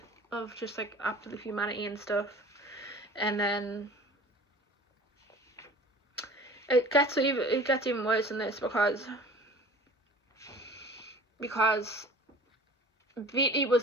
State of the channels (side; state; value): both; normal; correlation 0.44